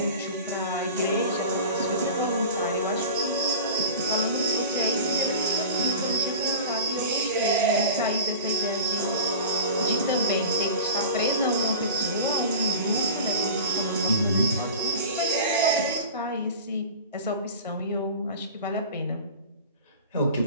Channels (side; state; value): both; inverted; correlation -0.36